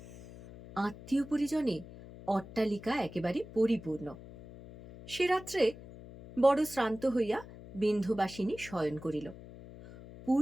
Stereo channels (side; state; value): left; noise; hum, 16 dB below the sound